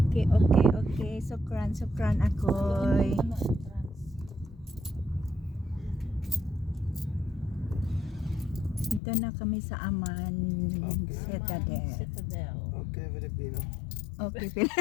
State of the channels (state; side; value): drops out; right; at 9.0 s